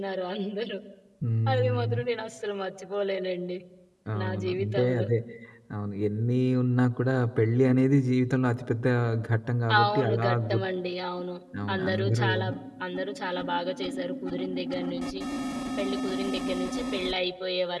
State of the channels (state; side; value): identical; both; correlation 1.00